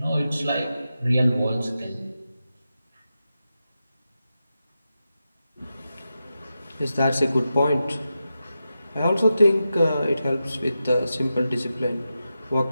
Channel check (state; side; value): inverted; both; correlation -0.90